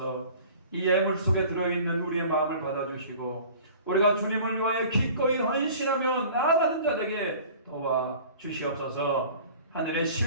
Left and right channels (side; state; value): both; inverted; correlation -0.46